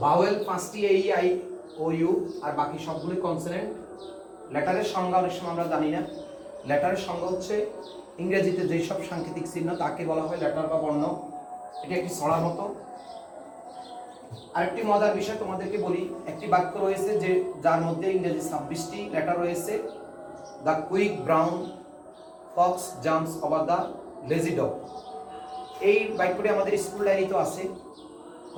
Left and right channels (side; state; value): both; identical; correlation 1.00